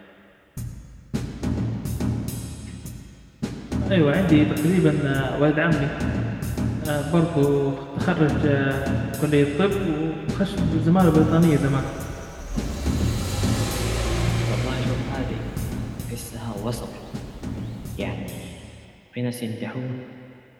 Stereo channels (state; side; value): identical; both; correlation 1.00